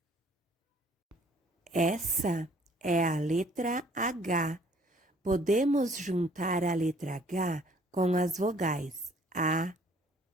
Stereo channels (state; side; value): normal; both; correlation 0.58